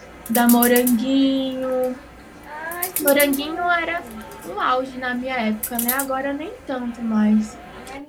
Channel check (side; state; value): both; identical; correlation 1.00